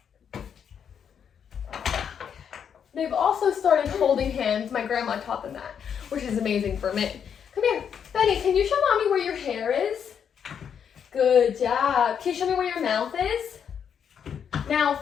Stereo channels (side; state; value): right; quieter; 7.8 dB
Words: They've also started holding hands. My grandma taught them that, which is amazing for me. Come here. Benny, can you show mommy where your hair is? Good job. Can you show me where your mouth is?